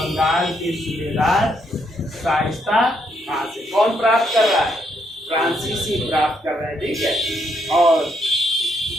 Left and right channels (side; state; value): both; normal; correlation 0.75